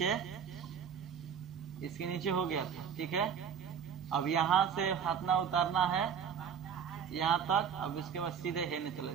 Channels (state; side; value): quieter; left; 7.5 dB